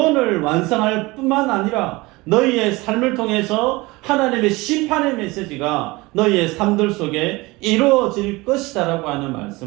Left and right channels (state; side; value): quieter; left; 22.5 dB